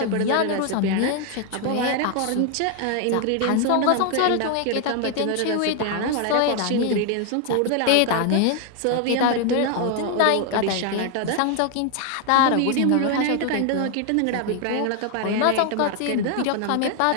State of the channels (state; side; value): different; both; correlation 0.00